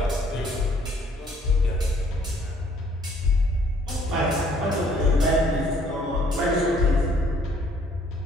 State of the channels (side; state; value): both; normal; correlation 0.62